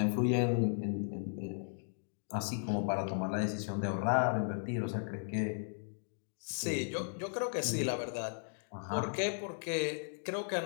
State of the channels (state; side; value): silent; right; digital silence